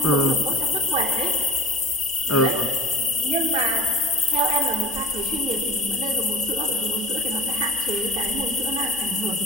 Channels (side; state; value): both; normal; correlation 0.39